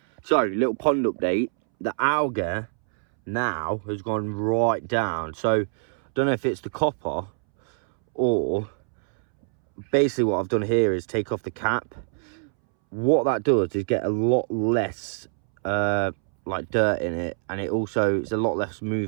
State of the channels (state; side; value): silent; left; 62 dB below the other